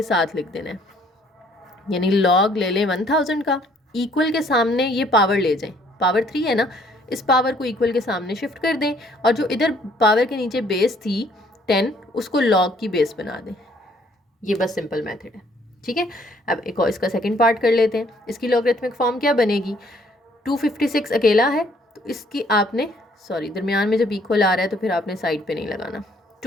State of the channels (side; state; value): both; normal; correlation 0.63